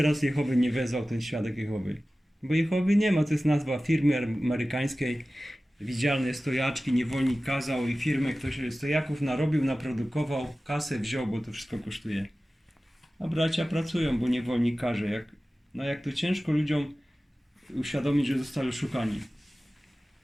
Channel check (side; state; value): both; normal; correlation 0.96